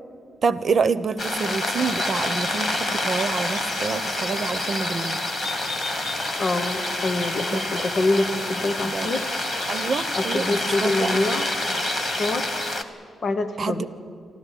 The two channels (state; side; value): normal; both; correlation 0.83